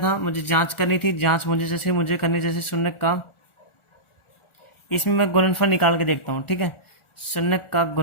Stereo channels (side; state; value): right; late; 1.4 ms